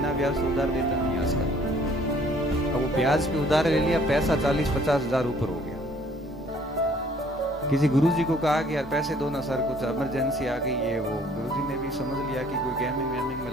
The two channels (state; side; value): normal; both; correlation 0.59